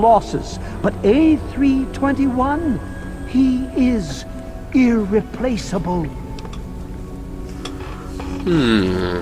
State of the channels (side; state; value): both; identical; correlation 1.00